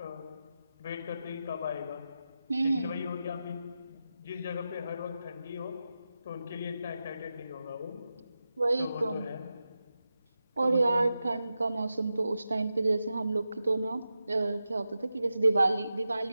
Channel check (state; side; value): inverted; both; correlation -0.91